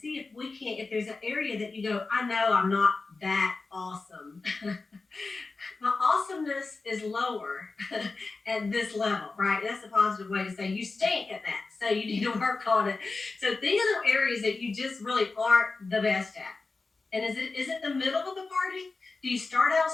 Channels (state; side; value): quieter; right; 3.9 dB